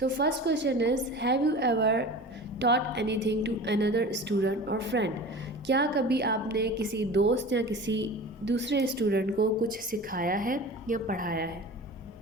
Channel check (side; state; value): both; normal; correlation 0.36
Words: first question is, have you ever taught anything to another student or friend? क्या कभी आपने किसी दोस्त या किसी दूसरे स्टूडेंट को कुछ सिखाया है या पढ़ाया है?